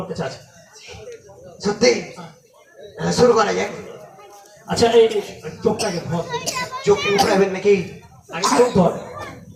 কাছে আছে। সত্যি শুরু করা যায়। আচ্ছা এই এই চোখটাকে ধর, চোখ উঠাবেন নাকি? আগে চোখ ধর।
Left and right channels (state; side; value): identical; both; correlation 1.00